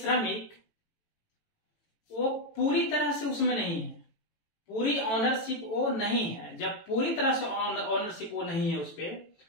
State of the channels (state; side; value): late; right; 18 ms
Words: वो पूरी तरह से उसमें नहीं है, पूरी ऑनरशिप वो नहीं है। जब पूरी तरह से ऑनरशिप वो नहीं है उस पर,